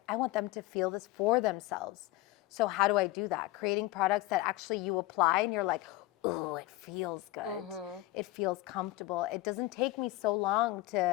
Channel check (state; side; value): quieter; right; 17.9 dB